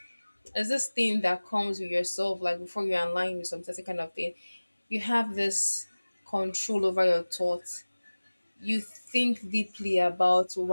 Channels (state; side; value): inverted; both; correlation -1.00